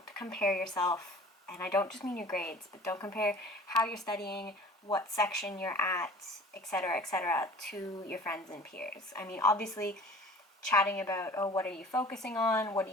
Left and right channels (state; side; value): normal; both; correlation 0.45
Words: compare yourself, and I don't just mean your grades, but don't compare how you're studying, what section you're at, etc., to your friends and peers. I mean, obviously, chatting about, oh, what are you focusing on? What do